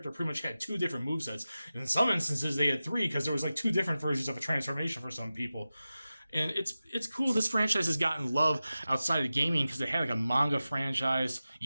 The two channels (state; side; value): inverted; both; correlation -0.94